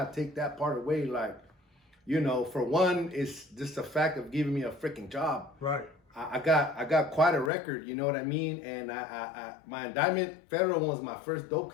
take that part away. Like, you know, for one, it's just the fact of giving me a freaking job. Right. I got quite a record, you know what I mean? And my indictment, federal one, was my first dope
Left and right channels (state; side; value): drops out; right; at 7.5 s